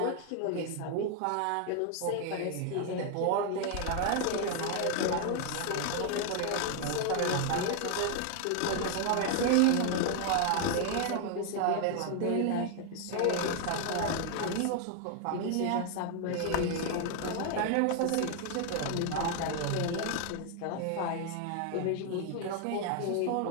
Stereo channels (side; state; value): both; different; correlation 0.00